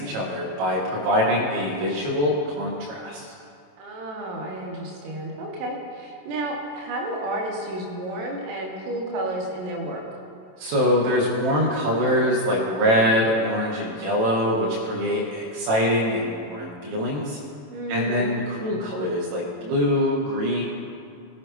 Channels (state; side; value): late; left; 27 ms